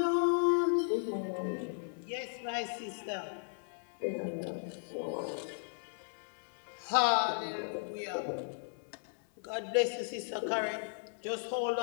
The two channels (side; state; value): right; silent; 54 dB below the other